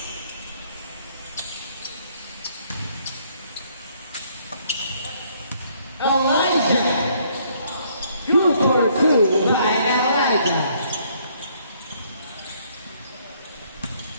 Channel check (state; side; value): inverted; both; correlation -0.66